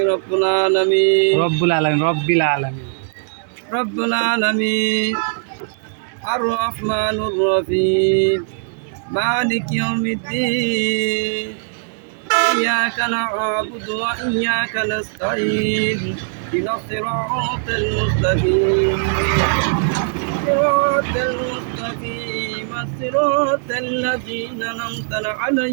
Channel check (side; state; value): left; silent; digital silence